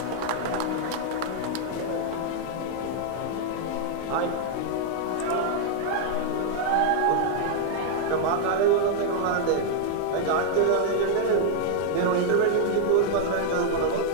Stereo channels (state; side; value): different; both; correlation 0.00